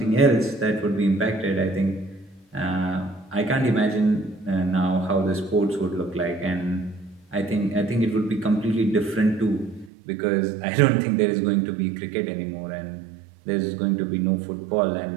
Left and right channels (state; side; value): drops out; left; at 9.9 s